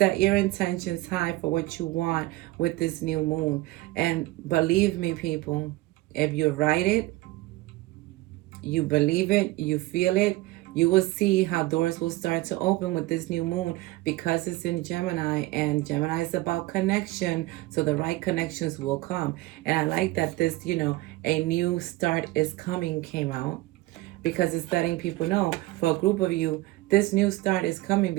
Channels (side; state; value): left; quieter; 19.5 dB